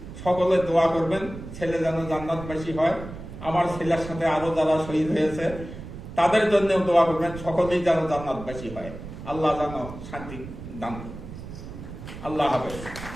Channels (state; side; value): noise; right; rumble, 12 dB below the sound